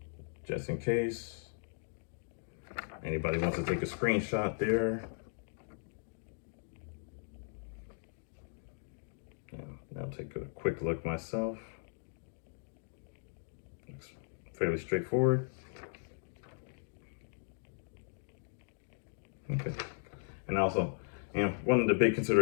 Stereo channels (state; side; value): silent; right; digital silence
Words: just in case anybody wants to take a screenshot there. I'll take a quick look myself. Looks fairly straightforward. Okay. And also, one of the big